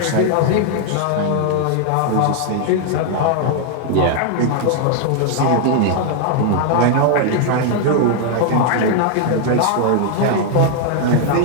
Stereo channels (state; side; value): different; both; correlation 0.00